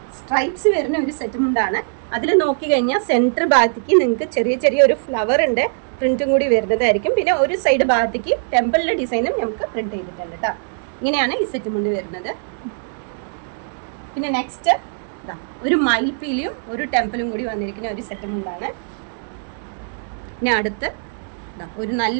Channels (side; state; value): left; silent; digital silence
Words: സ്ട്രൈപ്സ് വരുന്ന ഒരു സെറ്റ് മുണ്ടാണ്. അതിൽ നോക്കി കഴിഞ്ഞാൽ സെൻറ്റർ ഭാഗത്തേക്ക് നിങ്ങൾക്ക് ചെറിയ ചെറിയ ഒരു ഫ്ലവറിന്റെ പ്രിന്റും കൂടി വരുന്നതായിരിക്കും. പിന്നെ ഒരു സൈഡ് ഭാഗത്തേക്ക് ടെമ്പിളിന്റെ ഡിസൈനും നമുക്ക് പ്രിന്റ് ചെയ്തിട്ടുണ്ട് കേട്ടോ. ഇങ്ങനെയാണ് ഈ സെറ്റ് മുണ്ട് വരുന്നത്. പിന്നെ നെക്സ്റ്റ് ഒരു മയിൽപ്പീലിയും ഒരു ടെമ്പിളും കൂടി വന്നിരിക്കുന്ന ഒരു സെറ്റ് മുണ്ടാണ്. പിന്നെ അടുത്ത് ഒരു